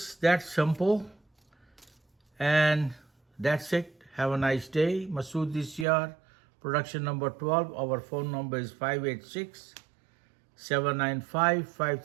that simple. And that's it. Have a nice day. Masud DCR, production number 12. Our phone number is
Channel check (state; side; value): drops out; left; at 5.9 s